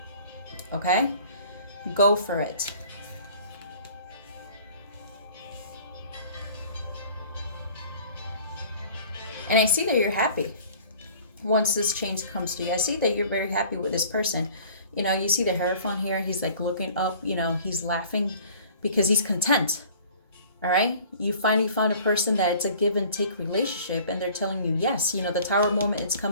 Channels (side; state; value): both; inverted; correlation -0.49